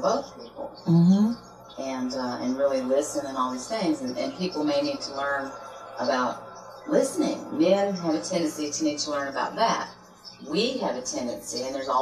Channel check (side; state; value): both; identical; correlation 1.00